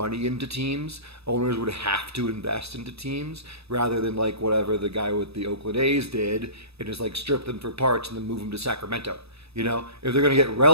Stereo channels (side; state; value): left; late; 0.78 ms